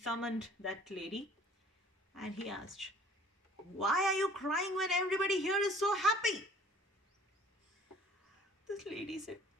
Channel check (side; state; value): both; normal; correlation 0.52